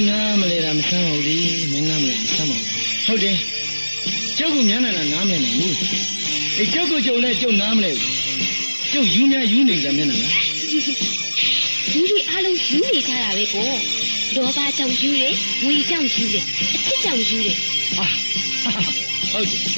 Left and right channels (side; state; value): both; inverted; correlation -1.00